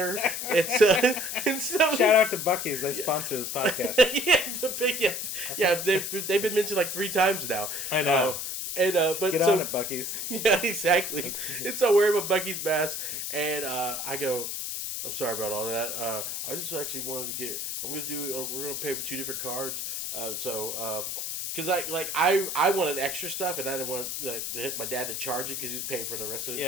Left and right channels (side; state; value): left; noise; hiss, 4 dB below the sound